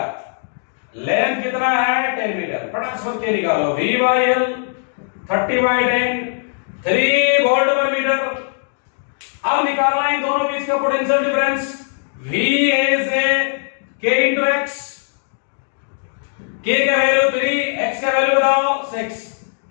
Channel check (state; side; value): silent; right; digital silence